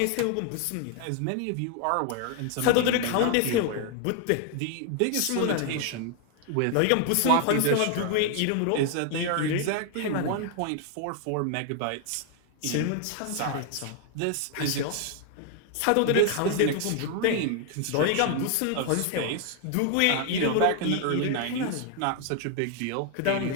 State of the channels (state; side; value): different; both; correlation 0.00